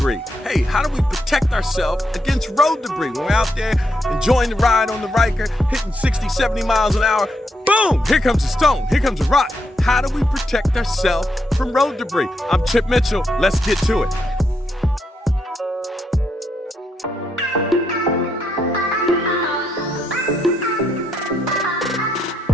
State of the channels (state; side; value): normal; both; correlation 0.79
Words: Hey, how do we protect ourselves against road debris? When we're out there enjoying the ride on the Ryker, hitting 60, 70 miles an hour, boom! Here comes a stone. Here comes a rock. How do we protect ourselves from road debris? I'm Chip Mitchell. Let's get to it.